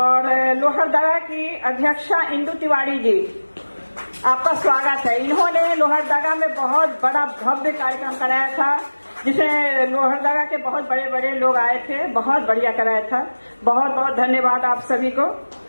लोहरदगा की अध्यक्षा इंदु तिवारी जी, आपका स्वागत है। इन्होंने लोहरदगा में बहुत बड़ा भव्य कार्यक्रम कराया था, जिसमें लोहरदगा के बहुत बड़े बड़े लोग आए थे, बहुत बढ़िया कराया था, बहुत बहुत धन्यवाद आप सभी को।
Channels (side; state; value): both; inverted; correlation -1.00